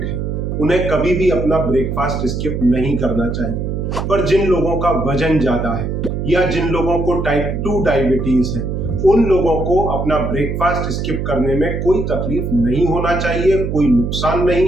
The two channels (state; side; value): noise; right; hum, 3 dB below the sound